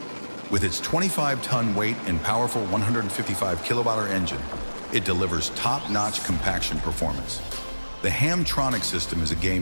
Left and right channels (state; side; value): inverted; both; correlation -1.00